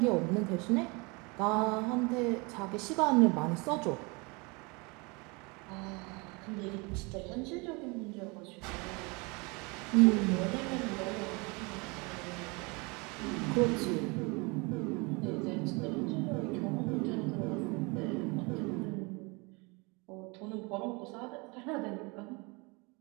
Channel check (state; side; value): quieter; left; 28.3 dB